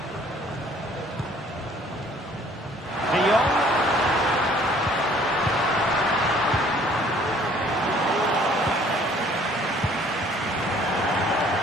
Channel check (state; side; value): normal; both; correlation 0.57